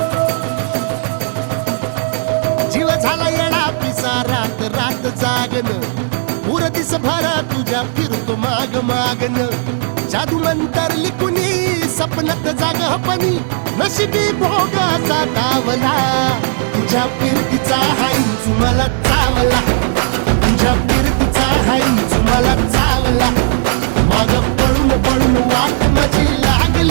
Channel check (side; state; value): left; silent; 68 dB below the other